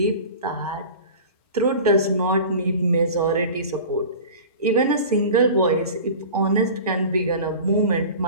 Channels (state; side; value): inverted; both; correlation -0.38